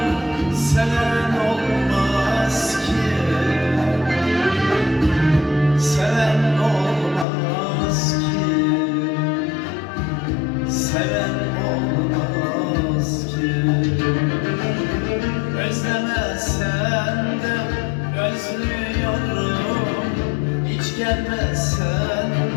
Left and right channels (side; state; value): right; drops out; at 7.2 s